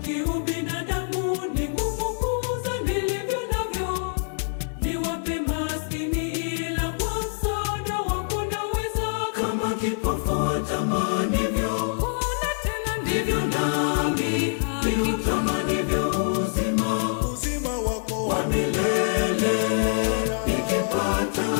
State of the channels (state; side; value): silent; right; 56 dB below the other